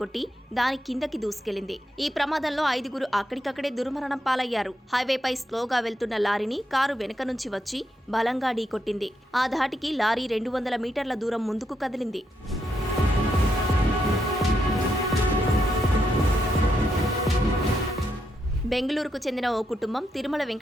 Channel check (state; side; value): normal; both; correlation 0.81